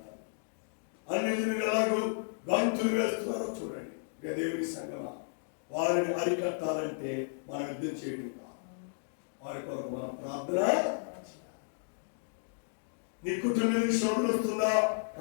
అన్యజనులు ఎలాగో గంతులు వేస్తున్నారో చూడండి. దేవుని సంగమా, వారిని అరికట్టాలంటే మనం యుద్ధం చేయడం కాదు, వారి కొరకు మనం ప్రార్థన. నీ కుటుంబానికి శ్రమ వస్తుందా?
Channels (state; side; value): silent; right; digital silence